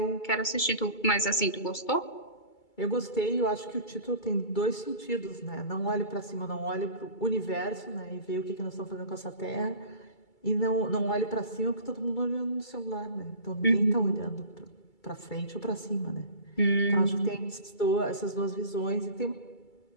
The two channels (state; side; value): late; right; 2.3 ms